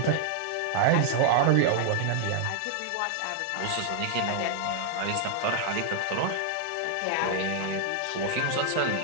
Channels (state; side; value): different; both; correlation 0.00